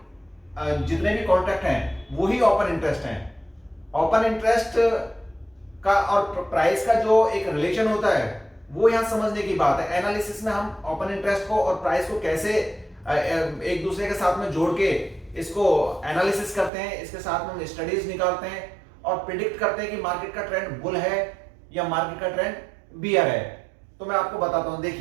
जितने भी कॉन्ट्रैक्ट हैं वही ओपन इंटरेस्ट हैं। ओपन इंटरेस्ट का और प्राइस का जो एक रिलेशन होता है वो यहां समझने की बात है। एनालिसिस में हम ओपन इंटरेस्ट को और प्राइस को कैसे एक दूसरे के साथ में जोड़ के इसको एनालिसिस करते हैं, इसके साथ में हम स्टडीज निकालते हैं और प्रिडिक्ट करते हैं कि मार्केट का ट्रेंड बुल है या मार्केट का ट्रेंड बियर है। तो मैं आपको बताता हूं,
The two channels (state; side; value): drops out; left; at 16.7 s